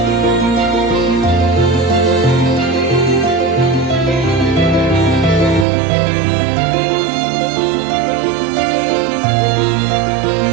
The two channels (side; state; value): left; drops out; at 5.7 s